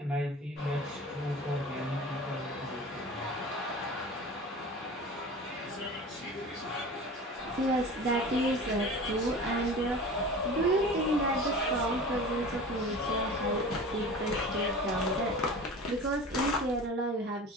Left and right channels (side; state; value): both; normal; correlation 0.37